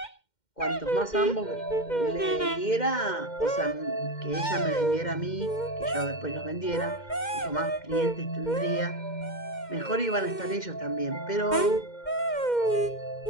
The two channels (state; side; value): late; right; 2.1 ms